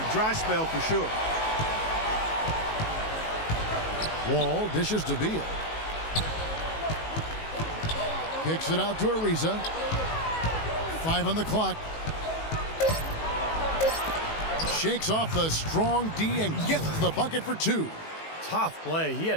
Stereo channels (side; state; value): right; late; 19 ms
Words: Dry spell for sure. Wall dishes to Beal. Kicks it out to Ariza. 5 on the clock. Shakes off the strong D and gets the bucket for 2. Tough play. He had